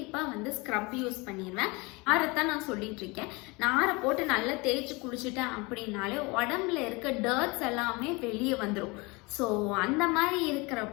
வந்து ஸ்க்ரப் யூஸ் பண்ணிடுவேன். நாரைத்தான் நான் சொல்லிட்டு இருக்கேன். நாரை போட்டு நல்லா தேய்ச்சி குளிச்சுட்டேன் அப்படின்னாலே உடம்புல இருக்க டர்ட்ஸ் எல்லாமே வெளியே வந்துடும். ஸோ அந்த மாதிரி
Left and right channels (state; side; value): quieter; right; 26.2 dB